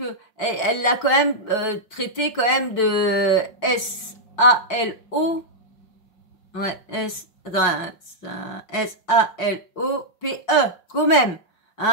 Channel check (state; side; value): late; right; 5.5 ms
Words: elle l'a quand même traité quand même de SALO. Ouais, SALOPE, quand même,